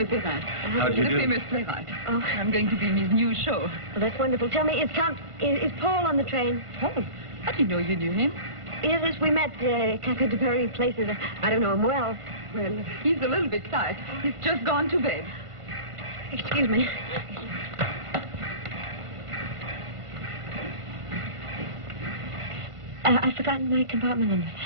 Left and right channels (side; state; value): left; late; 1.5 ms